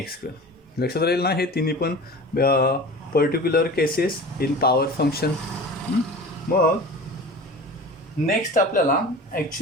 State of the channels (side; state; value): both; normal; correlation 0.37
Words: लक्षात राहील ना, हे तिन्ही पण particular cases in power function. मग नेक्स्ट आपल्याला